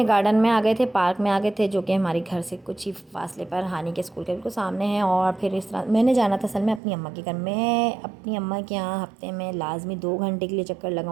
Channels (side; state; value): left; drops out; at 6.8 s